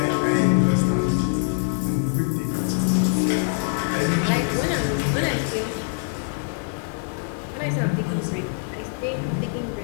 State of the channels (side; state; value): right; silent; digital silence